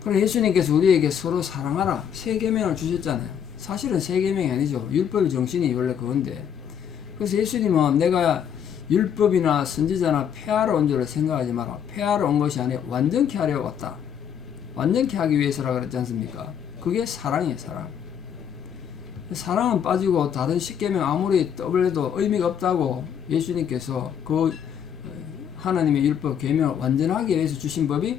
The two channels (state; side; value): quieter; right; 8.4 dB